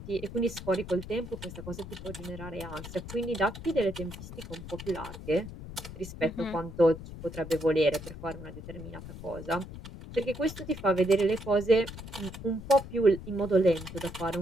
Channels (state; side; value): noise; left; rumble, 11 dB below the sound